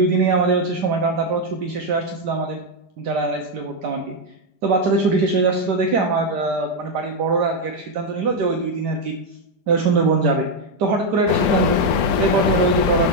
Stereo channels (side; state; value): left; late; 5.0 ms